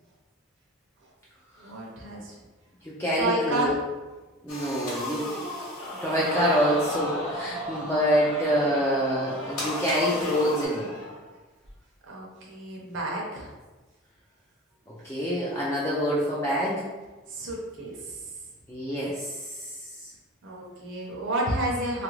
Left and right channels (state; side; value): normal; both; correlation 0.35